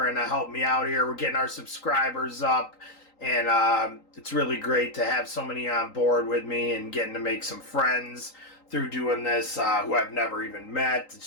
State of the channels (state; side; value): late; right; 3.8 ms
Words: and help me out here. We're getting our subscribers up, and it's really great to have so many on board with me and getting to make some friends through doing this who I've never even met.